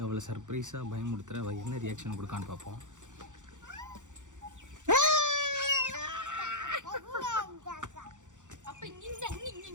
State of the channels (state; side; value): late; left; 0.86 ms